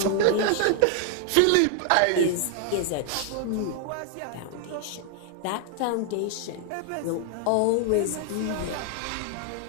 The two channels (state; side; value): different; both; correlation 0.00